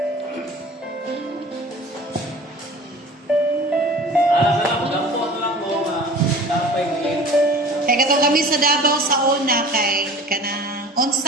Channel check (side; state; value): both; normal; correlation 0.42